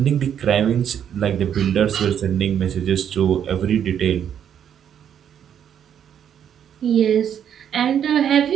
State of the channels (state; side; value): quieter; left; 9.0 dB